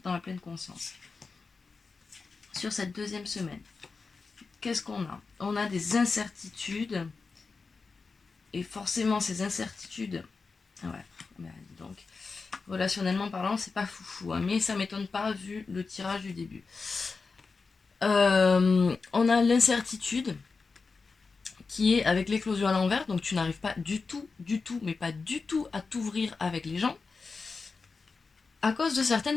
dans la pleine conscience. Sur cette deuxième semaine, qu'est-ce qu'on a? On a des incertitudes et forcément ces incertitudes, ouais, donc relationnellement parlant, c'est pas foufou, hein, mais ça m'étonne pas vu le tirage du début. On a l'incertitude qui est avec l'éclosion à l'envers, donc tu n'arrives pas du tout, mais pas du tout à t'ouvrir avec les gens à cause de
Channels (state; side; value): quieter; right; 4.5 dB